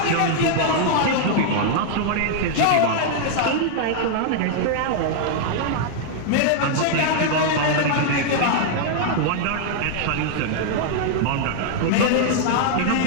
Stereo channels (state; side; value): different; both; correlation -0.01